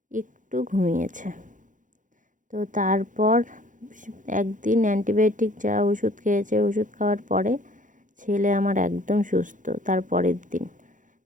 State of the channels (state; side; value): late; left; 0.37 ms